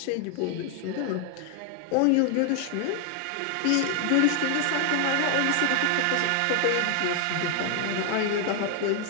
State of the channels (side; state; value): both; different; correlation 0.00